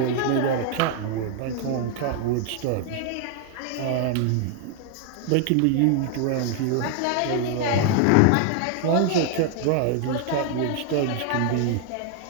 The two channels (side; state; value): both; different; correlation 0.00